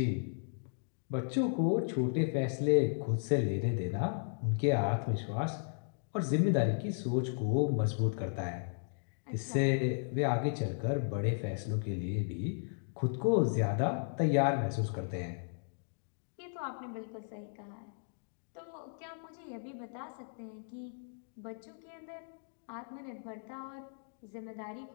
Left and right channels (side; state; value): right; silent; digital silence